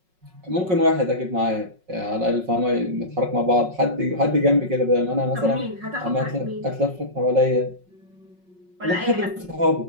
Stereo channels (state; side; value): late; left; 5.4 ms